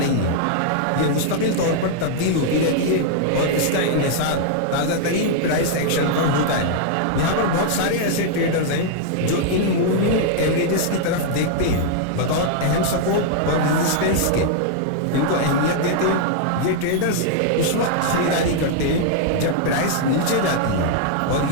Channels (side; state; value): both; different; correlation -0.01